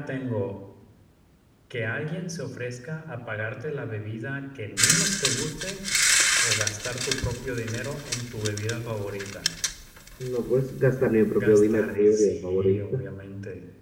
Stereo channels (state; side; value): identical; both; correlation 1.00